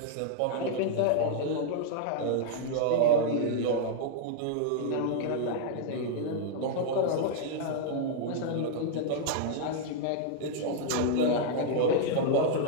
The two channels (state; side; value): different; both; correlation -0.01